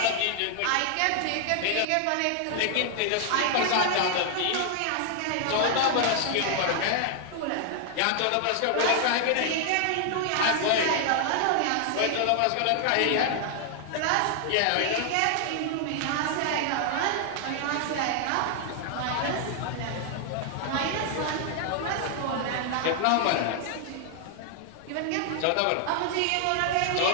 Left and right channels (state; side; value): different; both; correlation 0.00